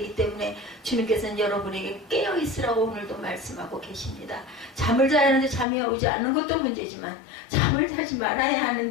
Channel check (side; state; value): right; drops out; at 5.7 s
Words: 때문에 주님께서는 여러분에게 깨어있으라고 오늘도 말씀하고 계십니다. 잠을 자야 하는데 잠이 오지 않는 것도 문제지만 잠을 자지 말아야